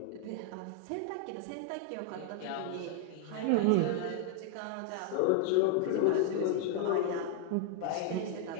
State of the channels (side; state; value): both; different; correlation 0.00